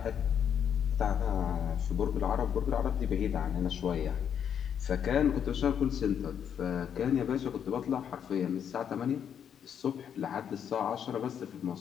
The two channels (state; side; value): quieter; right; 8.4 dB